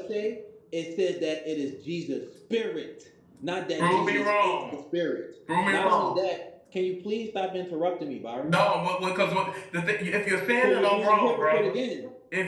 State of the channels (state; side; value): identical; both; correlation 1.00